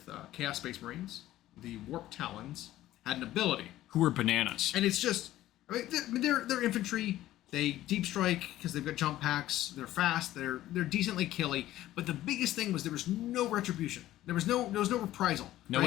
Chaos Space Marines. The Warp Talons had an ability. Who were bananas. And it's just, they're infantry. They deep strike because they've got jump packs. They're fast. They're decently killy. But the biggest thing was there was no retribution. There was no reprisal. No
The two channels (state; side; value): quieter; right; 14.5 dB